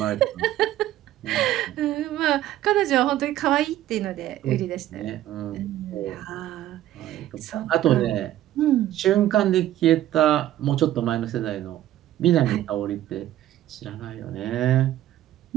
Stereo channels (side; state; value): left; quieter; 13.3 dB